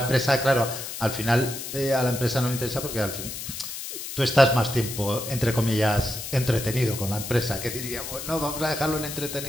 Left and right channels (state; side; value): noise; left; hiss, 8 dB below the sound